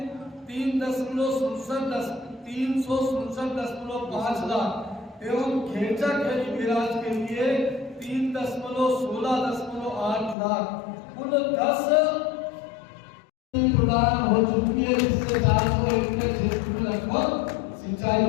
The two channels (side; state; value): right; drops out; at 10.4 s